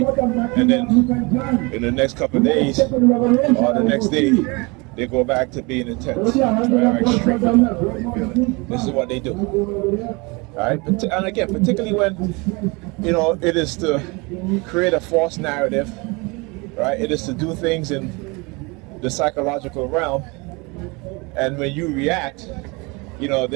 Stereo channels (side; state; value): left; quieter; 27.2 dB